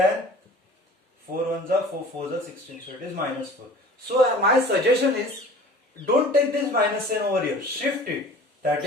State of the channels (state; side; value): normal; both; correlation 0.44